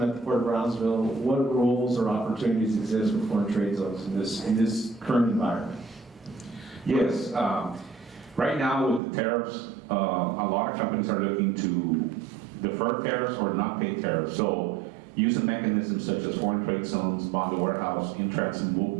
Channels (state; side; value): drops out; left; at 9.0 s